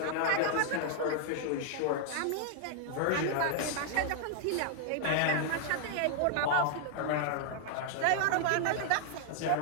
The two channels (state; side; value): different; both; correlation 0.00